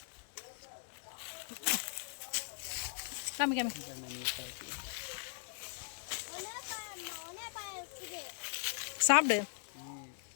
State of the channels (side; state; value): right; silent; 52 dB below the other